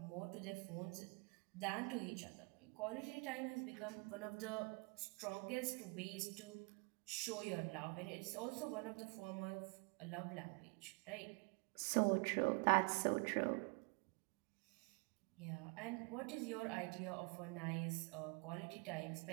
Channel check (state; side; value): quieter; left; 31.8 dB